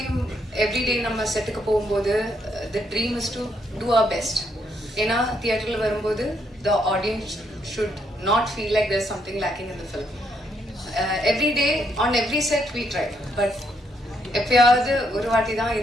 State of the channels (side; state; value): both; normal; correlation 0.75